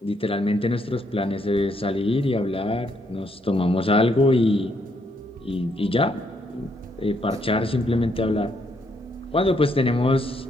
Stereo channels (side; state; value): both; normal; correlation 0.74